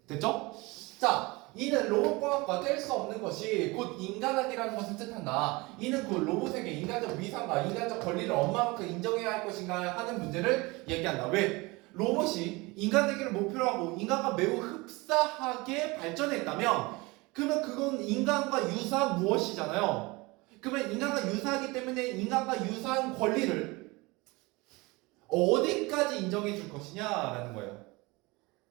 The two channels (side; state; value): left; quieter; 24.0 dB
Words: 됐죠? 자, 이는 로봇과학과 뗄 수 없는 것이 곧 인간학이라는 것을 뜻한다. 이는 곧 로봇에게 인간적 위상과 인간적 권리를 얼마만큼 인정해야 할 것인가 하는 문제를 얘기한다. 왜? 로봇이 인간 되기를 목표로 하고 인간과 매우 흡사하게 발전했다면 그러면 그건 인간과 유사한 무엇이잖아요. 그러면 인간과 유사하기 때문에 인간과 유사한 권리를 어디까지 인정해 줄 것이냐라는 거예요.